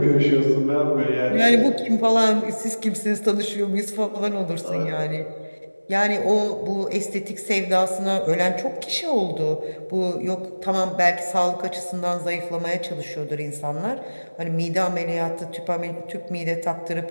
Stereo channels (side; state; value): both; inverted; correlation -1.00